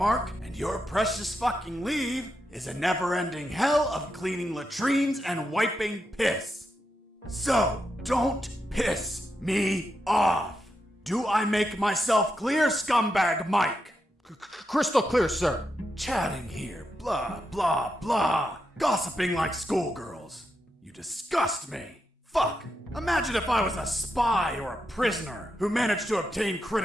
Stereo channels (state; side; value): normal; both; correlation 0.85